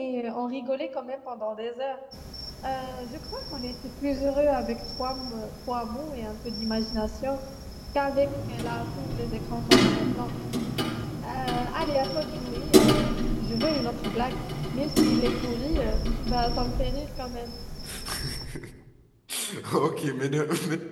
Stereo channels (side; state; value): both; identical; correlation 1.00